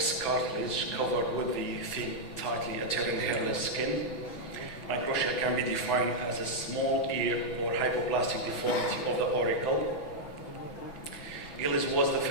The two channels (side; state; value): right; late; 6.1 ms